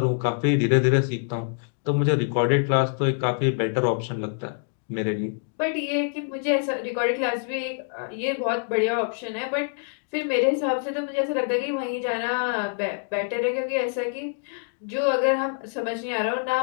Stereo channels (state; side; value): silent; right; 61 dB below the other